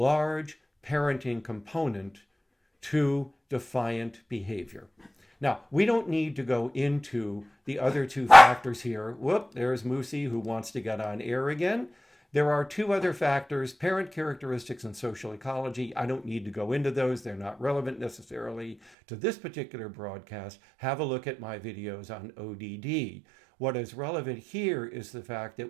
parenting component to defiant behavior. Now, we don't need to go into the other two factors here. Whoop, there's Moosey who wants to get on air again. There are two other factors, parent characteristics and social ecology. I don't need to go into those. They're not relevant necessarily to this particular broadcast. Have a look at my videos on ODD. What is relevant here is the fact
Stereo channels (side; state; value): left; drops out; at 18.8 s